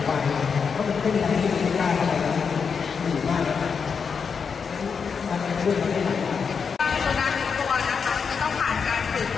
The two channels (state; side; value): quieter; right; 6.0 dB